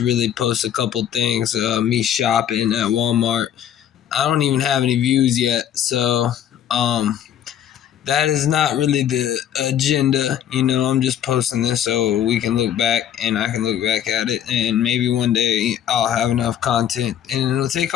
post a couple things. Me shopping at Walmart. I don't even have any views yet. So, um, that is not really the agenda. I'm just posting this so we can look back and I can look back at it. And maybe one day I'll have enough content and it'll take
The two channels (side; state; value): right; quieter; 10.2 dB